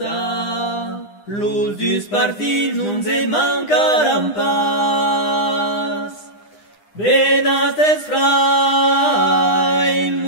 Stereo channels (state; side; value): late; right; 9.9 ms